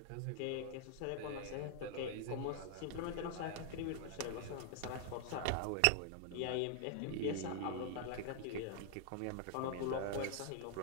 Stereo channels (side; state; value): both; different; correlation 0.00